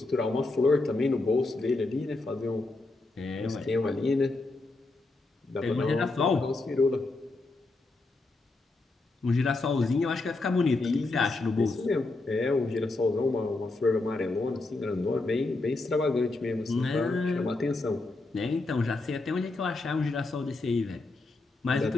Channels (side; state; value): right; quieter; 3.2 dB